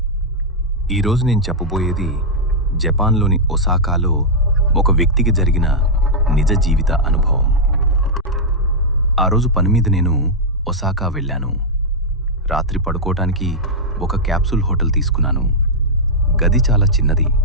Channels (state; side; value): normal; both; correlation -0.05